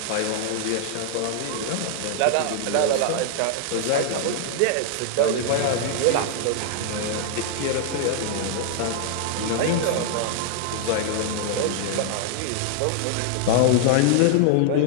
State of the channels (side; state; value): both; different; correlation 0.00